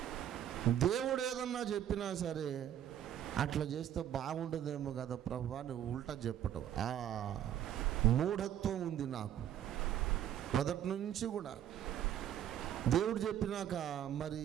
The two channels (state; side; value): quieter; left; 10.6 dB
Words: దేవుడు ఏదన్నా చెప్పినా సరే అట్లా చేస్తే బాగుండదేమో కదా ప్రభు అని ఉల్టా చెప్పటం, ఆ మూఢత్వం ఉంది నాకు మొదటి నుంచి కూడా. దేవుడు చెప్పినాక మరి